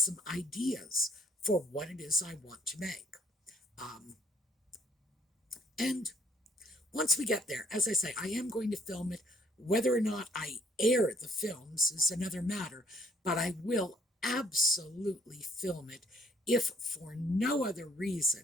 ideas for what it is I want to make. And once we get there, as I say, I am going to film it. Whether or not I air the films is another matter, but I will absolutely film it if for no other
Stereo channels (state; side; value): normal; both; correlation 0.64